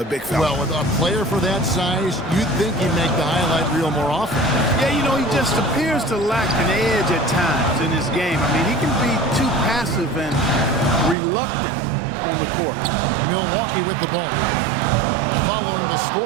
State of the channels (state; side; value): drops out; left; at 11.2 s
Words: big fella. Well, with a player for that size, you'd think he'd make the highlight reel more often. Yeah, you know, he just appears to lack an edge at times in his game. I mean, he can be too passive and reluctant on the court. Milwaukee with the ball. Following the